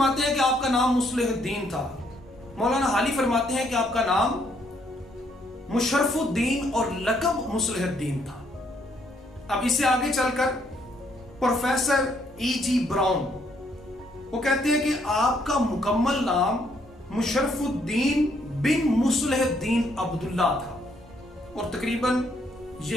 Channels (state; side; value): normal; both; correlation 0.70